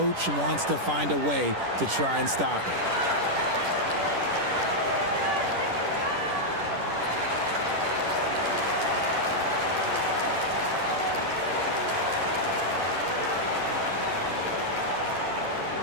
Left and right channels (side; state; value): left; late; 10 ms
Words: wants to find a way to try and stop it.